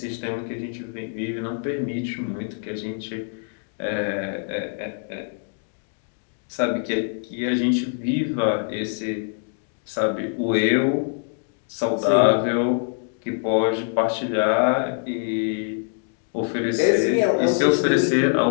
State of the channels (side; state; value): right; silent; 62 dB below the other